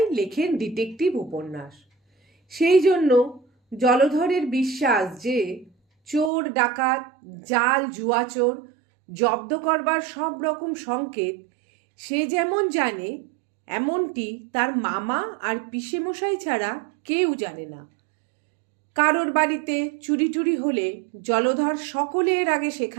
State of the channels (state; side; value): drops out; left; at 6.3 s